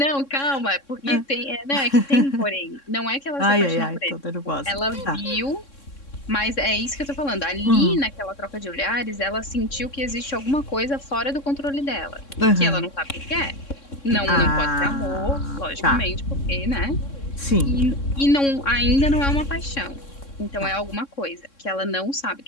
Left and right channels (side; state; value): right; late; 3.6 ms